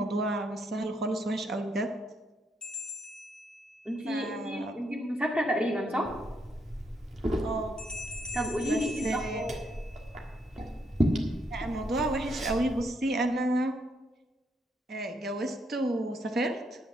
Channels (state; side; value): normal; both; correlation 0.76